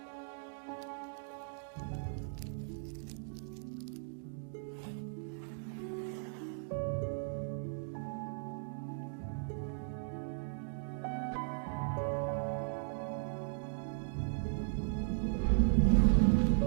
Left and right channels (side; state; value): left; silent; digital silence